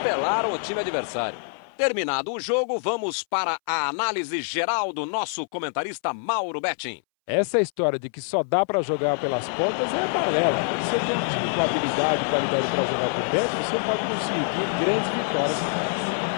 o time adversário. Terminado o jogo, vamos para a análise geral do nosso comentarista Mauro Betting. Essa história de que só dá para jogar pelas pontas é balela. Quando você tem um time com habilidade e qualidade para jogar por dentro, você pode conseguir grandes vitórias como essa.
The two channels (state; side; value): silent; right; 62 dB below the other